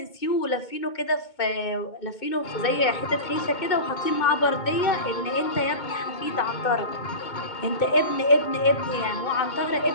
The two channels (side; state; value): right; late; 2.2 ms